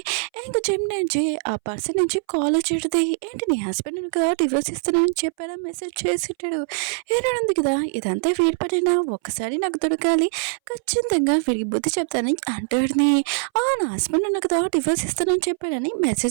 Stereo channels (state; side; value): silent; left; 62 dB below the other